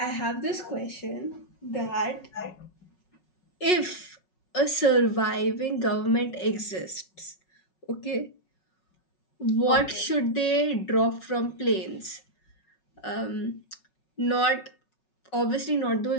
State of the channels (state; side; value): late; right; 5.4 ms